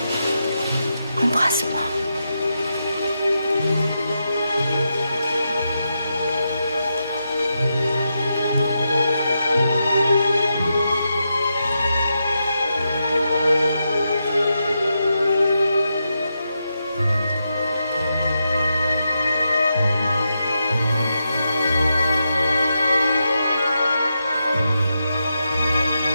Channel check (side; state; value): both; inverted; correlation -0.86